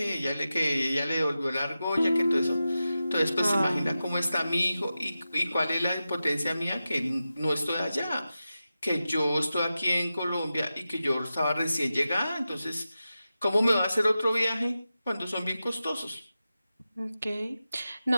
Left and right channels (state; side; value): inverted; both; correlation -0.93